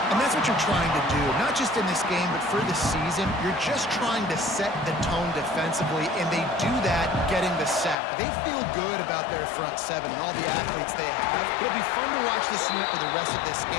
And that's what you're trying to do, not just in this game, but for the season. You're just trying to set the tone defensively, and they do that getting the sack. They feel good about their front 7 and all the athletes they have. It'll be fun to watch this unit for the rest of this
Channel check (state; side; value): drops out; right; at 8.0 s